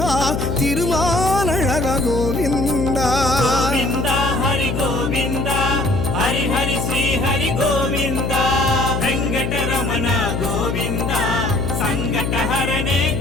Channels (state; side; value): noise; left; hum, 1 dB below the sound